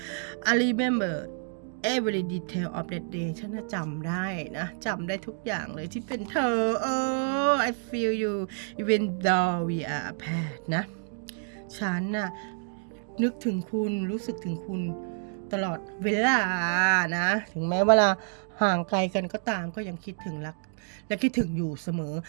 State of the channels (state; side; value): silent; left; 59 dB below the other